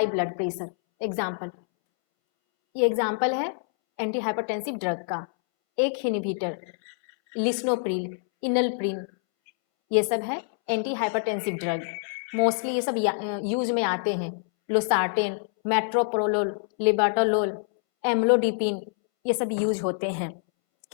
blood pressure. Example, ये एग्जाम्पल है एंटी हाइपरटेंसिव ड्रग का। एक इनहिबिटर, लिस्नोप्रिल, इनलप्रिन, ये सब है एंटी हाइपरटेंसिव ड्रग। मोस्टली ये सब यूज में आते हैं। लोसार्टेन, मेट्रोप्रोलोल, लिबाटोलोल, एम्लोडिपिन, ये सब यूज होते हैं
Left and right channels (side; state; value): right; silent; 61 dB below the other